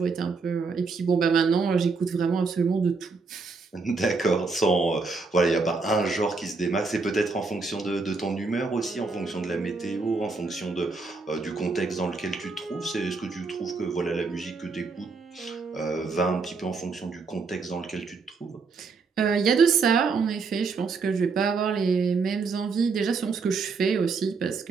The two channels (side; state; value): left; quieter; 4.4 dB